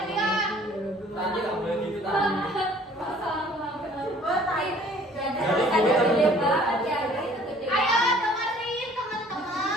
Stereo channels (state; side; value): normal; both; correlation 0.54